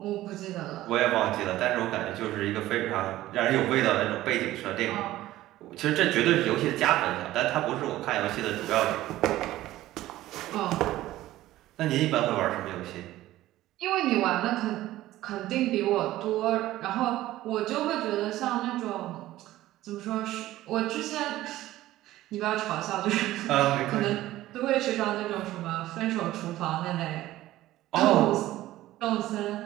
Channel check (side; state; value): left; quieter; 15.4 dB